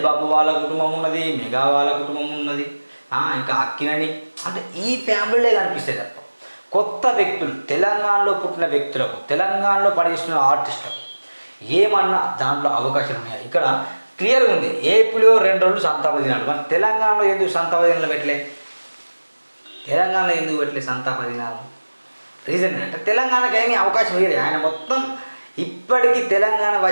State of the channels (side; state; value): both; inverted; correlation -1.00